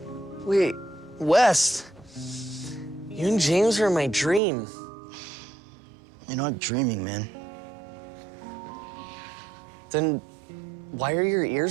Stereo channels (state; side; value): drops out; left; at 4.4 s